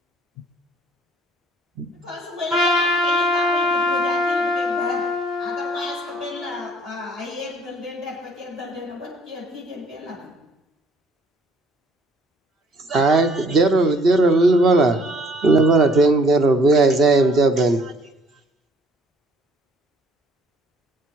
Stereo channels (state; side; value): normal; both; correlation 0.58